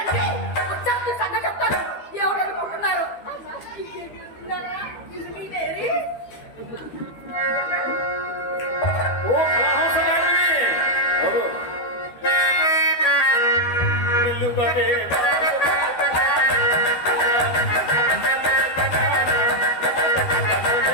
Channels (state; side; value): late; right; 12 ms